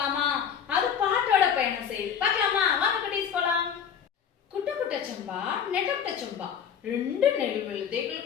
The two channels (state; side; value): quieter; right; 7.9 dB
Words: அது பாட்டோட பயணம் செய்யுது, பார்க்கலாமா? வாங்க குட்டீஸ் போலாம். குட்ட குட்ட சம்பா நெட்ட சம்பா ரெண்டு நெல்